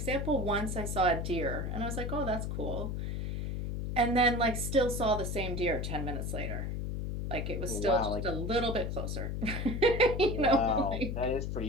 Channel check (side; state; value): left; noise; hum, 3 dB below the sound